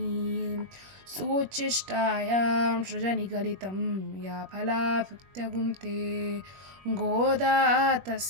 सोच्चिष्टायां सृजनिगलितं या फलाभुक्त्यगुंते गोदा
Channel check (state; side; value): late; left; 21 ms